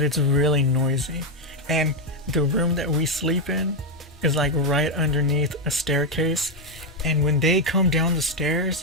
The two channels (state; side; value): normal; both; correlation 0.04